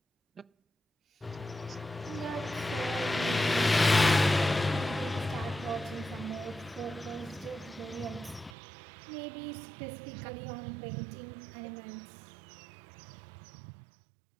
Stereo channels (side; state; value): left; drops out; at 8.5 s